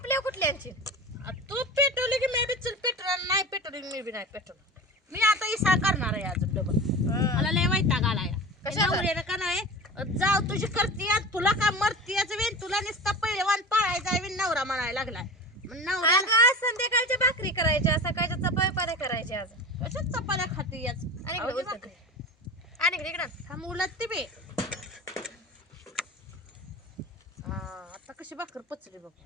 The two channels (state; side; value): normal; both; correlation 0.32